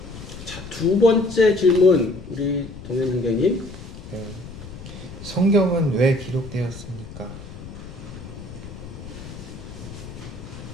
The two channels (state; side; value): noise; left; rumble, 13 dB below the sound